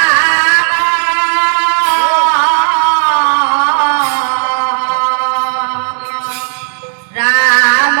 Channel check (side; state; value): left; silent; digital silence